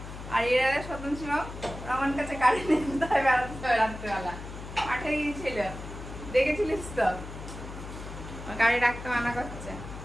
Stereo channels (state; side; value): noise; left; hum, 11 dB below the sound